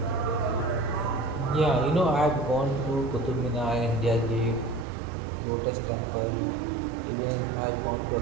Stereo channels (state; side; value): drops out; left; at 4.9 s